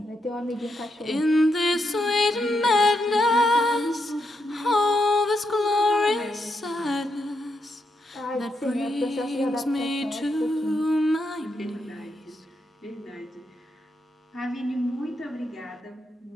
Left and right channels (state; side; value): normal; both; correlation 0.81